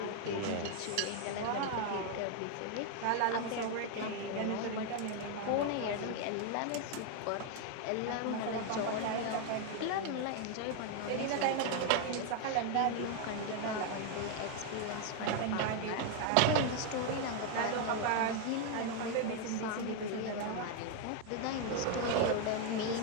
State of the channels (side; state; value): both; different; correlation 0.00